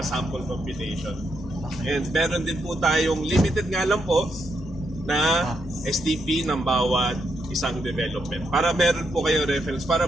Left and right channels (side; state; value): both; normal; correlation 0.80